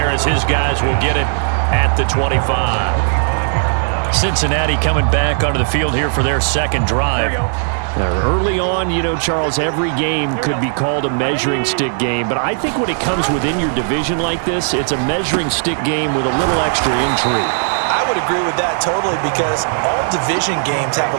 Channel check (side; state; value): left; silent; digital silence